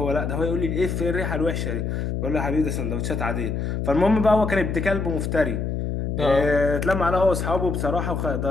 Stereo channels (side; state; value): left; noise; hum, 2 dB below the sound